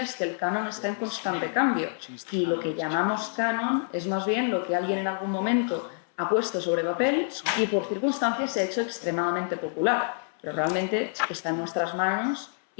es que el canon está en constante cambio y lo que llamamos canon es más bien lo que alguien en algún momento ha puesto sobre papel y por circunstancias se ha hecho extremadamente popular, pero realmente está en nuestras manos.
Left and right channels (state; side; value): silent; right; 60 dB below the other